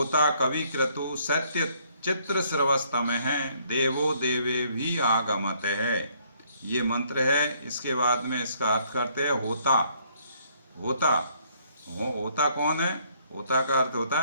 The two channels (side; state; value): both; inverted; correlation -0.67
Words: कवि क्रतु सत्य चित्र स्रवस्तमः देवो देवे भी आगमत है, ये मंत्र है। इसके बाद में इसका अर्थ करते हैं होता। होता कौन है? होता का अर्थ होता